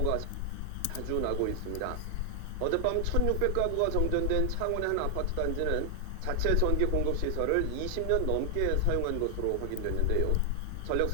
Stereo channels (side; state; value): both; different; correlation 0.00